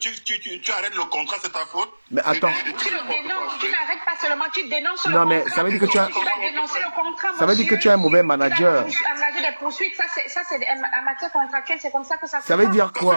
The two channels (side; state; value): both; inverted; correlation -1.00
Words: le contrat, c'est ta faute. Mais attends. Tu le dénonces, tu n'arrêtes pas seulement, tu dénonces le contrat. Non mais ça veut dire que tu as dénoncé le contrat. Ça veut dire que tu es un mauvais manager. Engager des poursuites, ça c'est en matière contractuelle, c'est comme ça que ça se passe. Ça veut dire